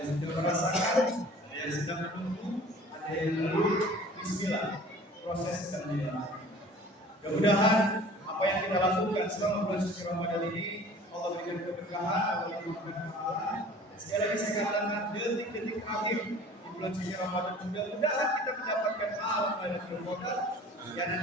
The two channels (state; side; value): normal; both; correlation 0.46